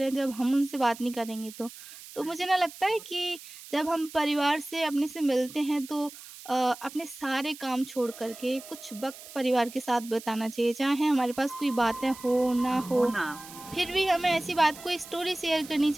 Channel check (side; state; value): right; noise; hiss, 16 dB below the sound